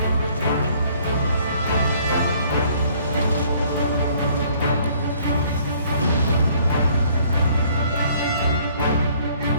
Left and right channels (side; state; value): both; inverted; correlation -0.60